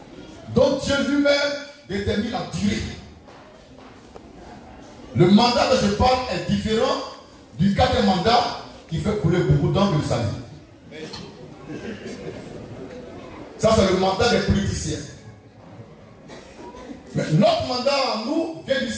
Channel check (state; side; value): identical; both; correlation 1.00